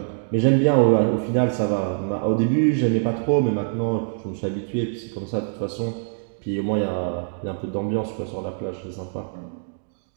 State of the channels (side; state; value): left; silent; digital silence